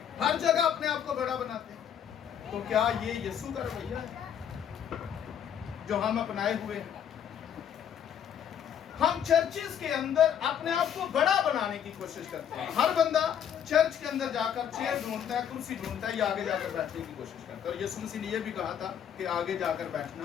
ہر جگہ اپنے آپ کو بڑا بناتے ہیں۔ تو کیا یہ یسوع کا رویہ ہے جو ہم اپنائے ہوئے ہیں؟ ہم چرچز کے اندر اپنے آپ کو بڑا بنانے کی کوشش کرتے ہیں۔ ہر بندہ چرچ کے اندر جا کر چیئر ڈھونڈتا ہے، کرسی ڈھونڈتا ہے، یا آگے جا کر بیٹھنے کی کوشش کرتا ہے۔ اور یسوع مسیح نے یہ بھی کہا تھا کہ آگے جا کر بیٹھنا،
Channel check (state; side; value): quieter; right; 8.9 dB